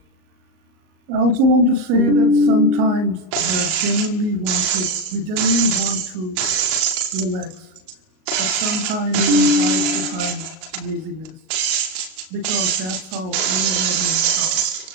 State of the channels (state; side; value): late; left; 38 ms